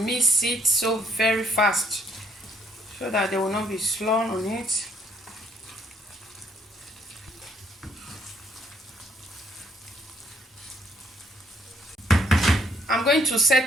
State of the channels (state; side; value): normal; both; correlation 0.69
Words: it so very fast so that there will not be slurry on it. I'm going to